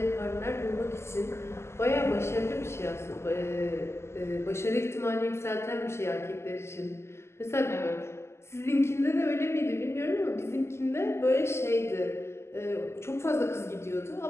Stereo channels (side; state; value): right; late; 0.13 ms